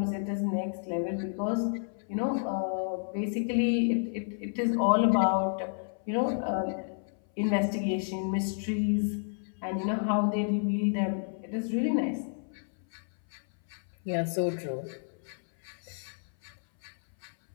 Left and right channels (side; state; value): right; silent; 57 dB below the other